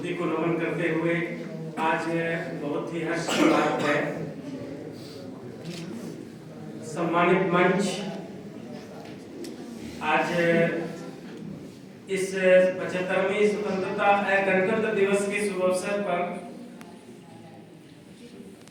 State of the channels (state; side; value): identical; both; correlation 1.00